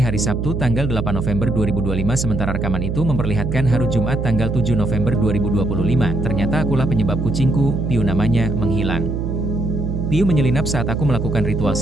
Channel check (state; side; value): noise; right; hum, 2 dB below the sound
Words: Sabtu tanggal 8 November 2025 sementara rekaman itu memperlihatkan hari Jumat tanggal 7 November 2025. Ternyata akulah penyebab kucingku, Piu namanya, menghilang. Piu menyelinap saat aku melakukan ritual